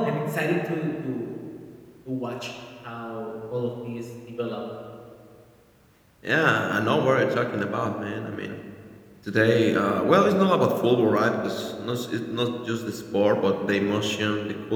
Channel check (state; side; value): identical; both; correlation 1.00